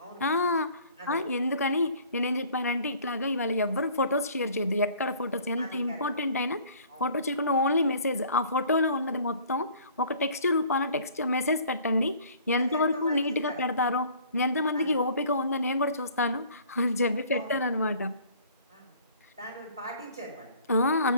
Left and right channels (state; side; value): inverted; both; correlation -0.52